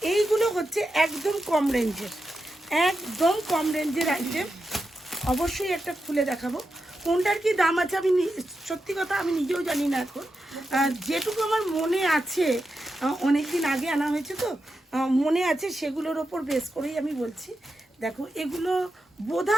এইগুলো হচ্ছে একদম কম রেঞ্জের, একদম কম রেঞ্জের আইটেম। অবশ্যই একটা খুলে দেখাবো। কোনটার কি দাম আছে আমি সত্যি কথা আমি নিজেও জানি না এখন। যেটুকু আমার মনে আছে, অনেক দিন আগে আনা হয়েছে তো মনে আছে, সেগুলোর ওপর বেস করেই আমি বলছি। দেখো এগুলো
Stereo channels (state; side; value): normal; both; correlation 0.88